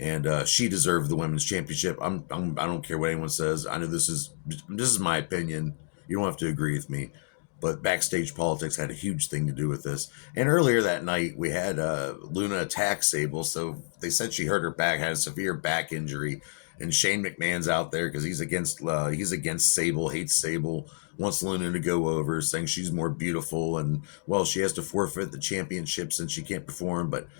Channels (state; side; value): silent; right; digital silence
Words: she deserved the women's championship. I don't care what anyone says. I know this is my opinion. You don't have to agree with me. But backstage politics had a huge thing to do with this. And earlier that night, we had Luna attack Sable. So they said she hurt her back, had a severe back injury. And Shane McMahon's out there because he's against Sable, hates Sable, wants Luna to go over, saying she's more beautiful. And, well, she has to forfeit the championship since she can't perform. But